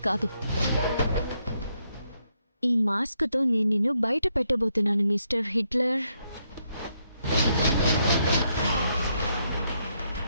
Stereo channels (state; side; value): inverted; both; correlation -0.77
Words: కాదు, ఈ మాస్క్ తో నేను నిన్ను బయట పెట్టబోతున్నాను మిస్టర్ హిట్లర్.